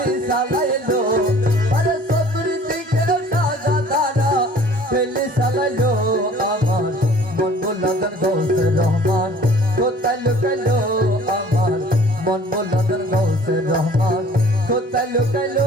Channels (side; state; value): both; normal; correlation 0.51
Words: সাজাইলো আরে চতুর্দিকে সাজা ধারা বুলাদার গৌসে রহমান কোথায় লুকাইলো আমার মন বুলাদার গৌসে রহমান কোথায় লুকাইলো